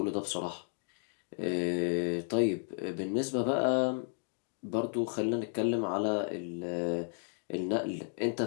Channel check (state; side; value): silent; right; 56 dB below the other